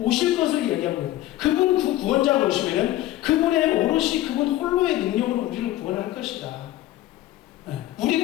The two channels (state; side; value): quieter; right; 15.0 dB